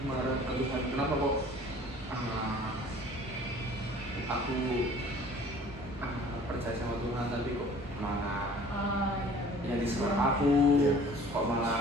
marah ke Tuhan. Kenapa kok aku percaya sama Tuhan tapi kok malah yang diserang aku, kok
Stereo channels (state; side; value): normal; both; correlation 0.50